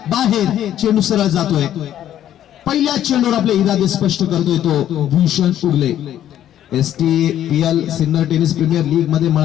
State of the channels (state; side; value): quieter; right; 11.3 dB